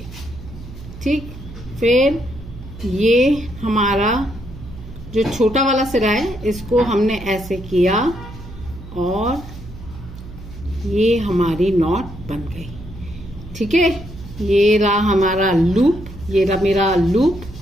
ठीक। फिर ये हमारा जो छोटा वाला सिरा है इसको हमने ऐसे किया और ये हमारी नॉट बन गई, ठीक है। ये रहा हमारा लूप, ये रहा मेरा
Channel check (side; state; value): right; noise; hum, 15 dB below the sound